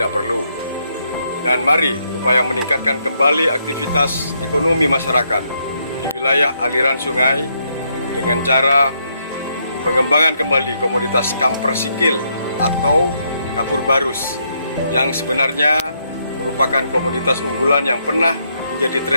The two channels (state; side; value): inverted; both; correlation -0.76